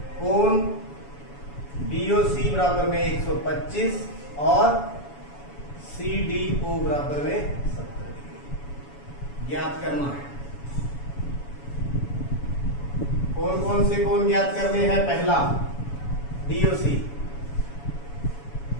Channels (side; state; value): right; late; 7.1 ms